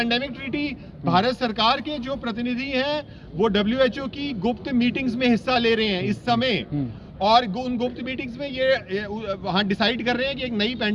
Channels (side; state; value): both; identical; correlation 1.00